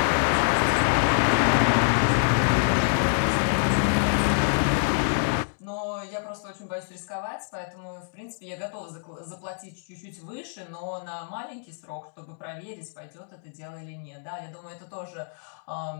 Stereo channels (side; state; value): right; silent; digital silence